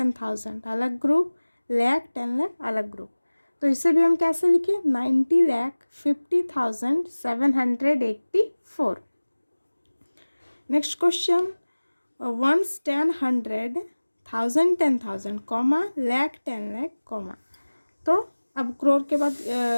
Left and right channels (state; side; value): inverted; both; correlation -1.00